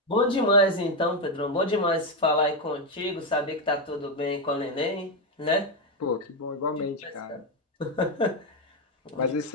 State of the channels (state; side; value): normal; both; correlation 0.07